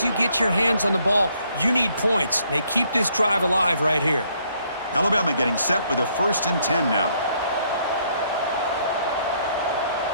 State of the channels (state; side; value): inverted; both; correlation -0.69